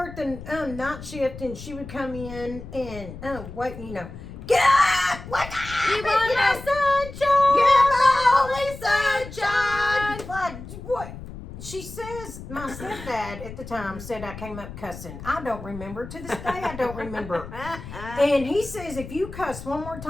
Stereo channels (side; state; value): left; noise; rumble, 12 dB below the sound